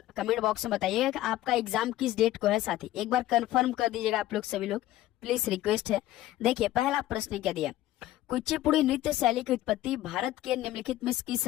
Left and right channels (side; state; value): right; quieter; 14.8 dB